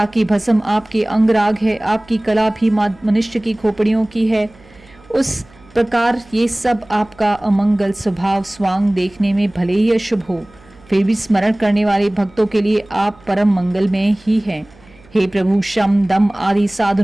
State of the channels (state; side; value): noise; right; hum, 27 dB below the sound